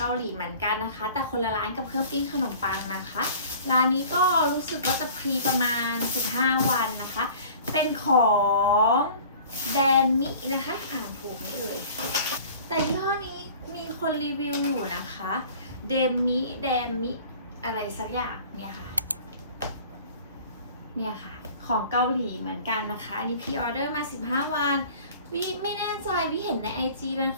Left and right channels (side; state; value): both; inverted; correlation -0.46